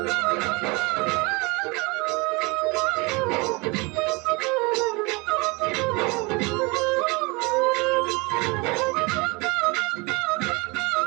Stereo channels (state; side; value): quieter; left; 27.0 dB